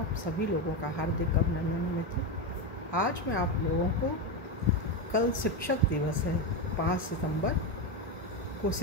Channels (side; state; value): both; normal; correlation 0.12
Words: सभी लोगों का हार्दिक अभिनंदन है मित्रों। आज मैं आप लोगों को कल शिक्षक दिवस है, 5 सितंबर को